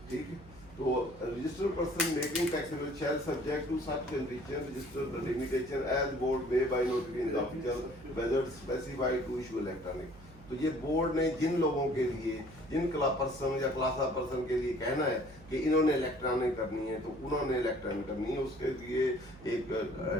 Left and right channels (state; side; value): noise; right; hum, 20 dB below the sound